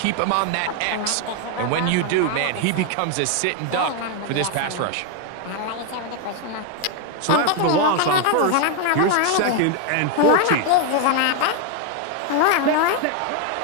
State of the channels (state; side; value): different; both; correlation 0.01